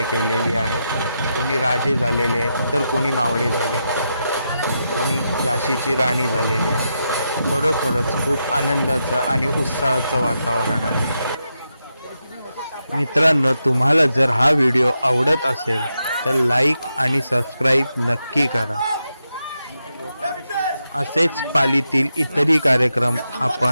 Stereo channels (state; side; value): inverted; both; correlation -0.85